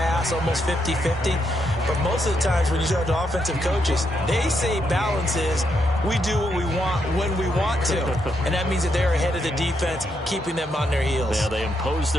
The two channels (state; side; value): normal; both; correlation 0.79